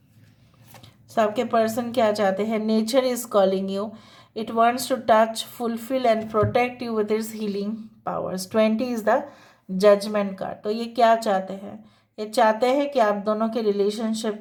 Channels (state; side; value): identical; both; correlation 1.00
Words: सो आपके पर्सन क्या चाहते हैं? Nature is calling you, it wants to touch, fulfil and protect you with its healing powers. 20 is the judgement card. तो ये क्या चाहते हैं? ये चाहते हैं कि आप दोनों के रिलेशनशिप